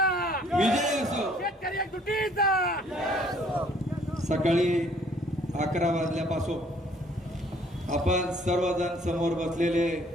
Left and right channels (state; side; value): normal; both; correlation 0.60